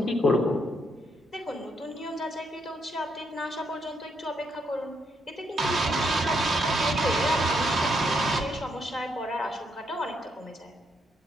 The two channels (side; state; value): both; normal; correlation 0.76